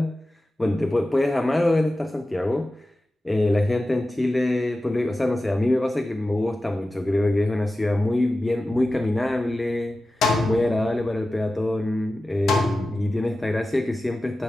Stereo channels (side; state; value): both; normal; correlation 0.94